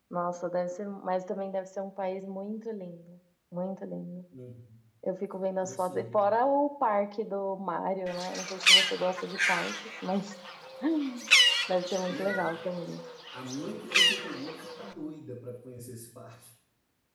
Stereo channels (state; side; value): identical; both; correlation 1.00